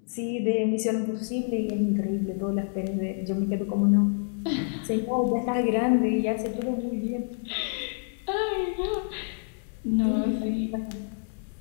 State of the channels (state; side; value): silent; right; digital silence